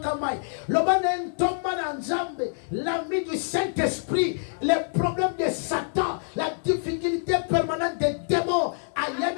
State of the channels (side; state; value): right; silent; 61 dB below the other